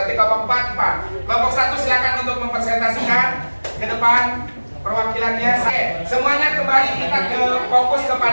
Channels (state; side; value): inverted; both; correlation -1.00